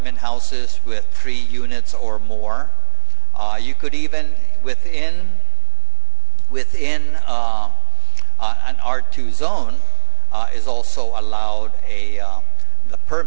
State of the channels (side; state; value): left; silent; digital silence